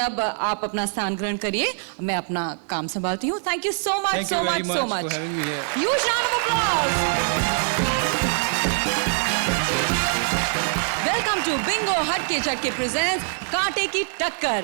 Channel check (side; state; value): left; silent; 63 dB below the other